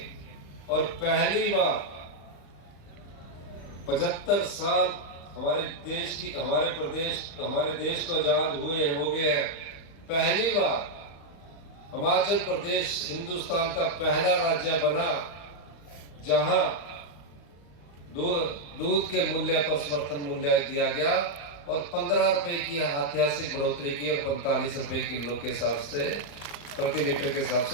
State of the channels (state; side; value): late; right; 35 ms